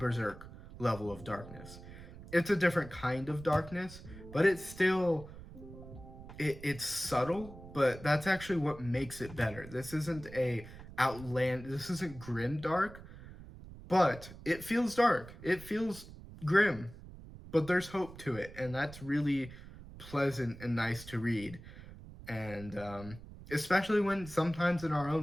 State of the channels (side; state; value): right; noise; rumble, 16 dB below the sound